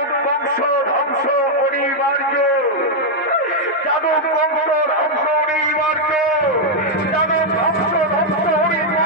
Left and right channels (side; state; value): both; normal; correlation -0.02